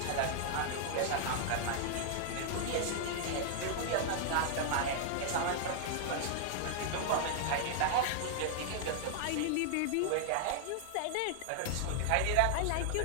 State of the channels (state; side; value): different; both; correlation 0.00